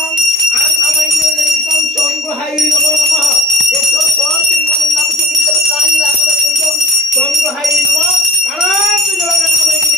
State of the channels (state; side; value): normal; both; correlation 0.40